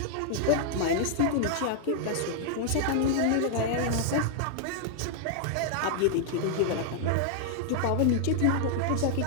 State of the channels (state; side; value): different; both; correlation -0.01